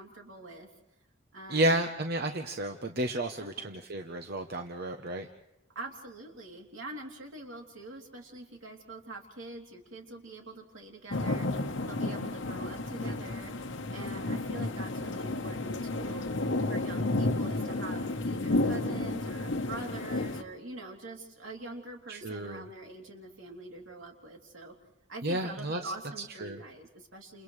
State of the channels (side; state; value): both; normal; correlation 0.25